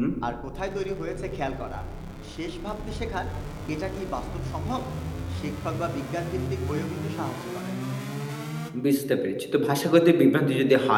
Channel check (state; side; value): identical; both; correlation 1.00